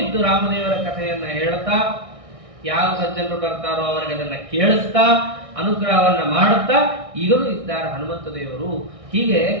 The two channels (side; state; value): left; late; 1.6 ms